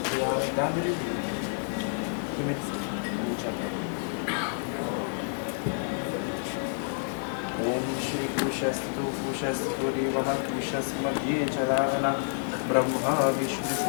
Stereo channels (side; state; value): right; silent; digital silence